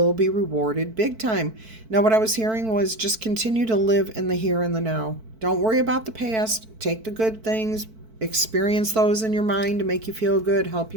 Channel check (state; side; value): late; left; 4.5 ms